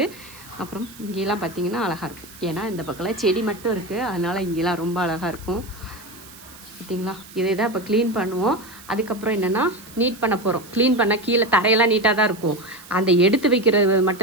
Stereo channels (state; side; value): noise; right; hiss, 19 dB below the sound